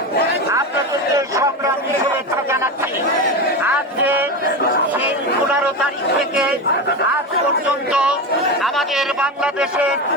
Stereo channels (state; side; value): normal; both; correlation 0.19